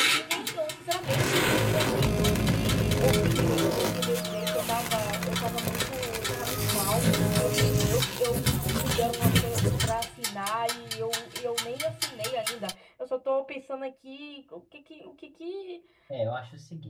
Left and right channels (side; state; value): both; identical; correlation 1.00